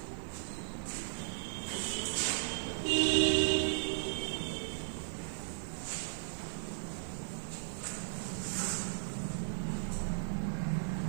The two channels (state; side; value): silent; left; digital silence